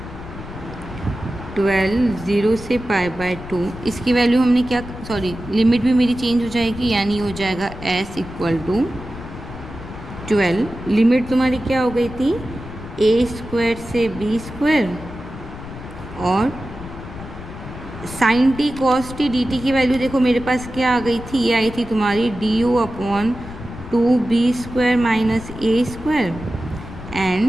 12, 0 से पाई बाय 2, इसकी वैल्यू हमने क्या, सॉरी लिमिट भी मेरी चेंज हो जाएगी, यानी हो जाएगा s इक्वल टू 12, लिमिट तुम्हारी क्या हो गई थी, ए स्क्वायर से बी स्क्वायर और sine T cos t d t की वैल्यू देखो मेरे पास क्या आ गई थी, ये आई थी तुम्हारी d u upon 2 b square minus a square,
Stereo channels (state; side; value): noise; left; rumble, 12 dB below the sound